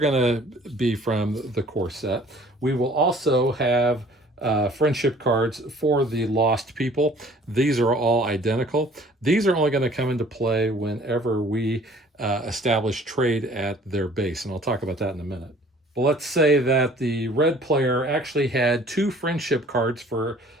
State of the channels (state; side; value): normal; both; correlation 0.53